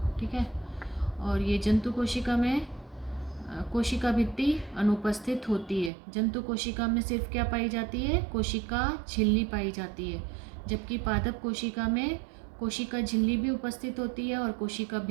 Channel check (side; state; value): left; drops out; at 5.9 s